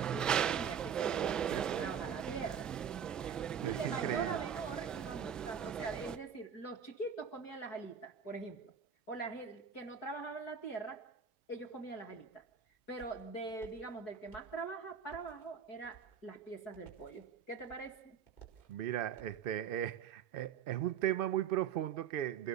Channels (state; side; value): quieter; left; 7.6 dB